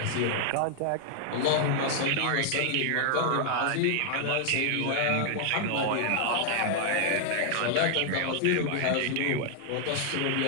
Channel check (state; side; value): different; both; correlation -0.01